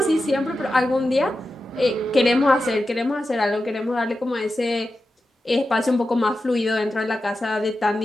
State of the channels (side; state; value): both; normal; correlation 0.91